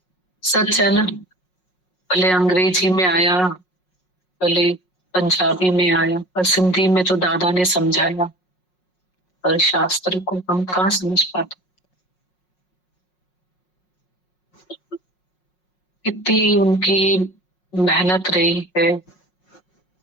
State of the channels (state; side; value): late; right; 5.5 ms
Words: सच है ना, भले अंग्रेजी में आया, भले पंजाबी में आया, पर सिंधी में तो दादा ने समझाया, और शास्त्र को हम कहाँ समझ पाते। कितनी उनकी मेहनत रही है,